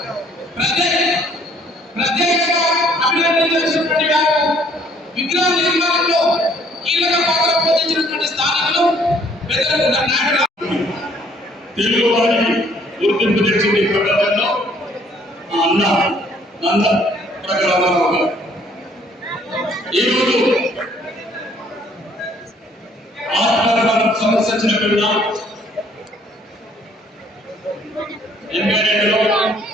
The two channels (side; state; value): both; normal; correlation 0.61